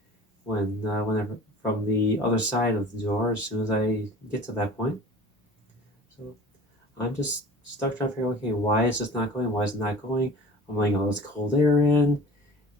whenever from the other side of the door as soon as I get to that point. So I'm just stuck trying to figure out, okay, why is this not going? Why is it not going? I'm letting all this cold air in.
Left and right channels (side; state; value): both; normal; correlation 0.42